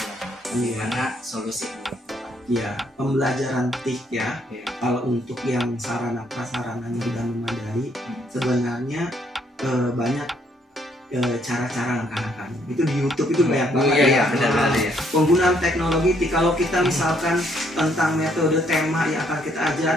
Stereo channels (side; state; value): both; normal; correlation 0.69